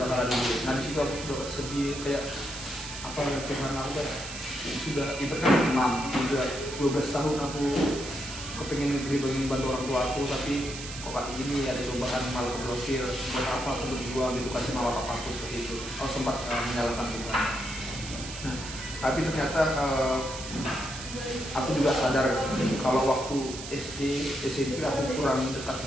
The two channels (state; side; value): noise; right; hiss, 10 dB below the sound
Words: Nah di situ aku sudah sedih kayak apa Tuhan aku kayak sudah ibaratnya 12 tahun aku kepengen negeri pengen bantu orang tua aku, tapi kok kayak gini ada cobaan malah keblokir. Buat apa aku berjuang gitu kan sama bapakku seperti itu. Aku sempat menyalahkan Tuhan. Nah, tapi ternyata aku juga sadar kalau waktu SD, SMP aku kurang dekat